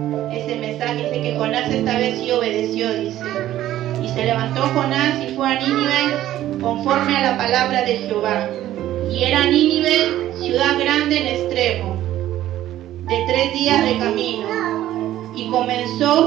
Ese mensaje dice que Jonás esta vez sí obedeció, dice. Y se levantó Jonás y fue a Nínive conforme a la palabra de Jehová. Y era Nínive ciudad grande en extremo, de 3 días de camino. Y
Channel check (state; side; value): quieter; left; 13.4 dB